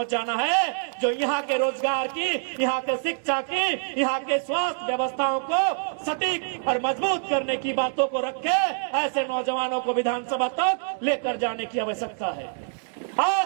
है, जो यहाँ के रोजगार की, यहाँ के शिक्षा की, यहाँ के स्वास्थ्य व्यवस्थाओं को सटीक और मजबूत करने की बातों को रखे। ऐसे नौजवानों को विधानसभा तक लेकर जाने की आवश्यकता है।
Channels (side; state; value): left; silent; digital silence